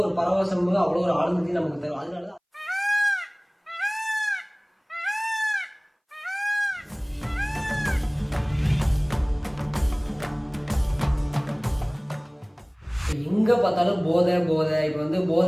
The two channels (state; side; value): identical; both; correlation 1.00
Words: ஒரு பரவசம், அவ்வளோ ஒரு ஆனந்தத்தையும் நமக்கு தரும். அதனாலதான் எங்க பார்த்தாலும் போதை போதை. இப்ப